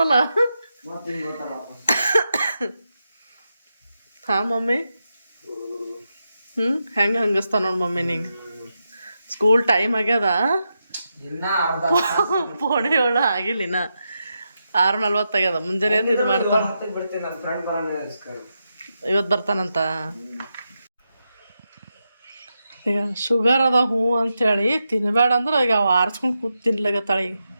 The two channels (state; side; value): inverted; both; correlation -0.87